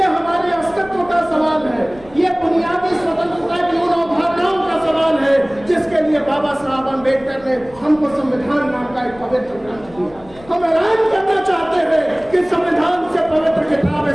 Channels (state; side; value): noise; left; rumble, 22 dB below the sound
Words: हमारे अस्तित्व का सवाल है, ये बुनियादी स्वतंत्रता की उन अवधारणाओं का सवाल है जिसके लिए बाबा साहब अम्बेडकर ने हमको संविधान नाम का एक पवित्र ग्रंथ दिया। हम ऐलान करना चाहते हैं कि संविधान से पवित्र किताब